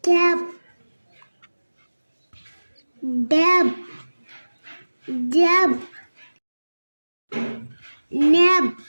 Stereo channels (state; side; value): inverted; both; correlation -1.00